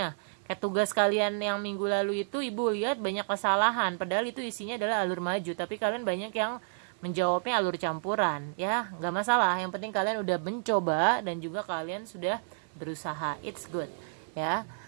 Kayak tugas kalian yang minggu lalu itu, ibu lihat banyak kesalahan, padahal itu isinya adalah alur maju, tapi kalian banyak yang menjawabnya alur campuran. Ya, nggak masalah, yang penting kalian udah mencoba dan juga kalian sudah berusaha, it's good ya.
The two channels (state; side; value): silent; left; 57 dB below the other